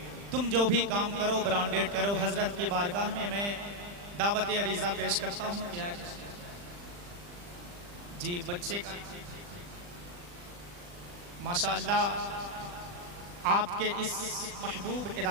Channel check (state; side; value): late; left; 40 ms